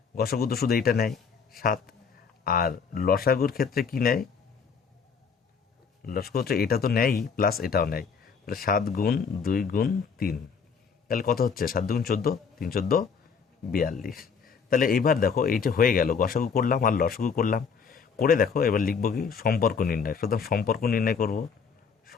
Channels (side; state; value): right; quieter; 6.0 dB